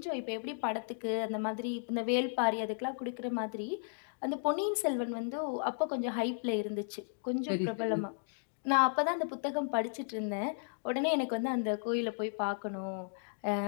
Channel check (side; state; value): right; silent; digital silence